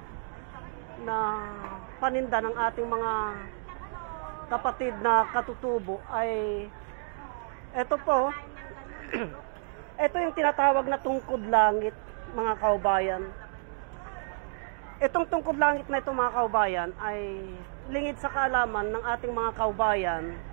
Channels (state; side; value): silent; left; digital silence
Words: na paninda ng ating mga kapatid na katutubo ay ito po. Ito yung tinatawag na tungkod langit, mga kababayan. Itong tungkod langit na ito, mga kababayan, ay lingid sa kaalaman ng ating mga kababayan